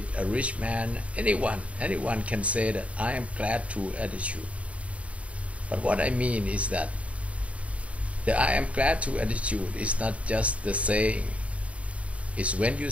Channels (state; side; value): late; left; 0.065 ms